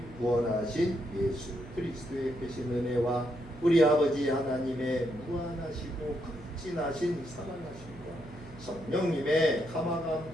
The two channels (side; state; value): right; noise; hum, 18 dB below the sound